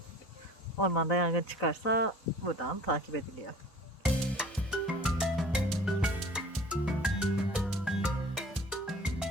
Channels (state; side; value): normal; both; correlation 0.46